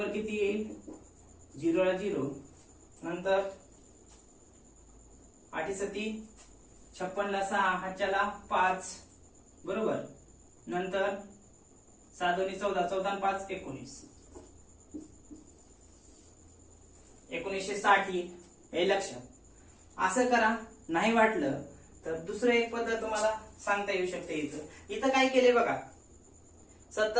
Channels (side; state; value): both; identical; correlation 1.00